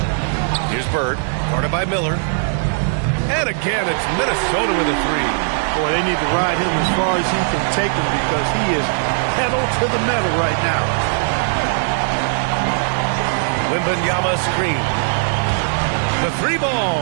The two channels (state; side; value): silent; left; 67 dB below the other